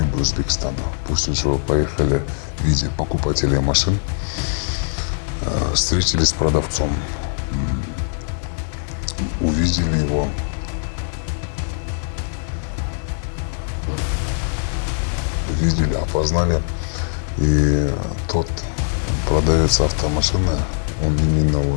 Узбекистана. После чего поехали в виде покупателей машин, встретились с продавцом, увидели его, опознали. И тот продавец автомашины, он именно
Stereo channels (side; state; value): right; silent; digital silence